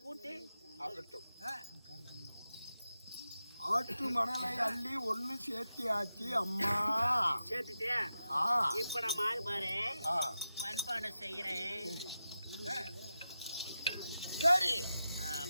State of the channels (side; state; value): both; inverted; correlation -0.91